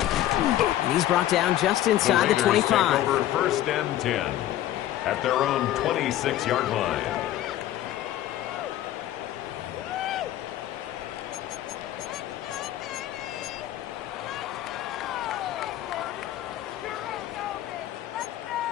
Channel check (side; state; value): right; quieter; 13.3 dB